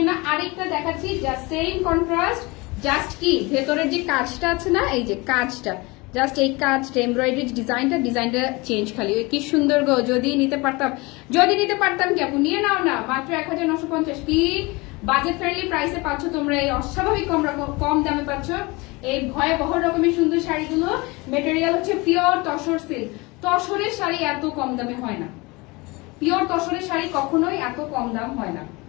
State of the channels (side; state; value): right; quieter; 24.8 dB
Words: আরেকটা দেখাচ্ছি, জাস্ট সেম কন্ট্রাস্ট, জাস্ট কি ভেতরের যে কাজটা আছে না, এই যে কাজটা, জাস্ট এই কাজটা এমব্রয়ডারি ডিজাইনটা চেঞ্জ, খালি কি সুন্দর গো। যদি নিতে পারতাম কি আপু, নিয়ে নাও না, মাত্র 1950। কি বাজেট ফ্রেন্ডলি প্রাইসে পাচ্ছ তোমরা, এই অস্বাভাবিক কম দামে পাচ্ছ এই ভয়াবহ রকমের সুন্দর শাড়িগুলো। মেটেরিয়াল হচ্ছে পিওর তসর সিল্ক, তসরের শাড়ি এত কম দামে হয় না, পিওর তসরের শাড়ি কখনোই এত কম দাম হয় না।